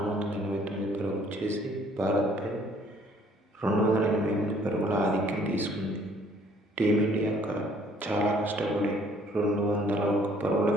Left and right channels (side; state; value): both; normal; correlation 0.60